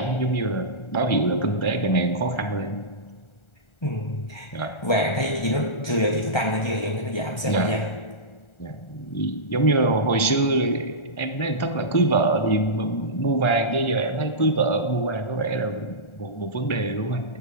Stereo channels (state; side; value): late; right; 1.3 ms